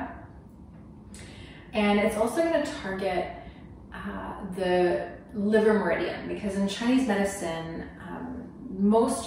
And it's also going to target the liver meridian, because in Chinese medicine,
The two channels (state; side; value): identical; both; correlation 1.00